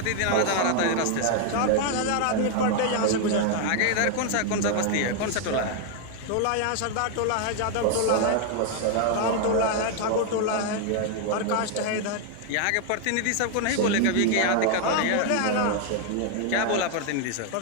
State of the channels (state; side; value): different; both; correlation 0.00